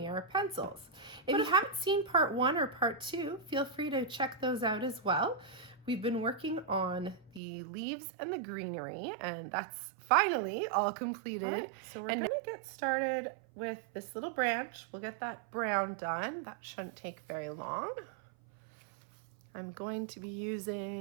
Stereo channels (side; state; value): left; drops out; at 7.4 s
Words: Pencils. If you haven't seen part 1 or part 2, feel free to check those out as well. We've been working on the leaves and the greenery, and that's finally all completed. All right, so we're gonna get started with this little branch. We'll get that brown done. That shouldn't take very long. I'm going to be